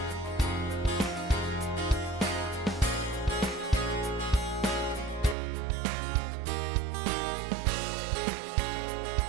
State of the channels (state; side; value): drops out; left; at 5.4 s